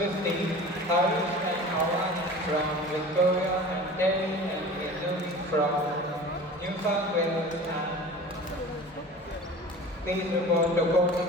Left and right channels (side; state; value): both; normal; correlation 0.39